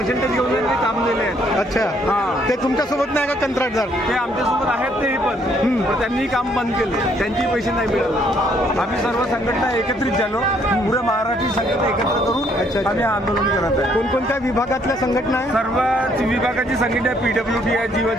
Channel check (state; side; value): normal; both; correlation 0.67